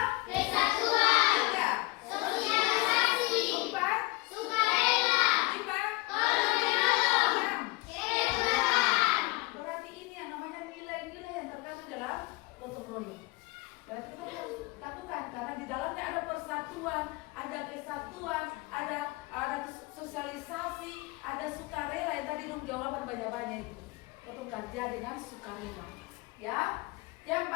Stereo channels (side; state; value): right; quieter; 23.7 dB